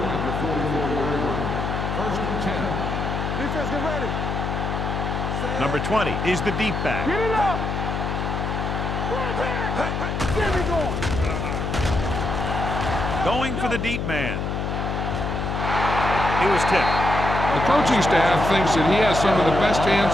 at the 44-yard line. First and 10. Defense, get ready. Number 20 is the deep back. Get it up. Get me going. Going for the deep man. He was tipped. The coaching staff thinks that he has some of the best hands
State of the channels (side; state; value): left; noise; hum, 2 dB below the sound